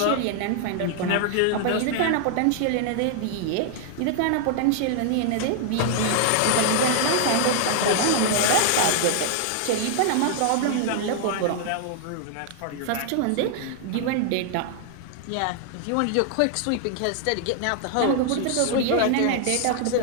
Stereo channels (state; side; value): different; both; correlation 0.00